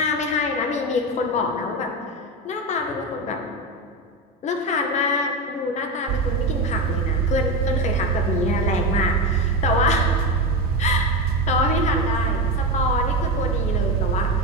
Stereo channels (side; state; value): both; normal; correlation 0.16